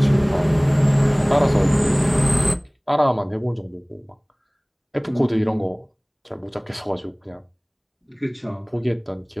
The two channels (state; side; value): identical; both; correlation 1.00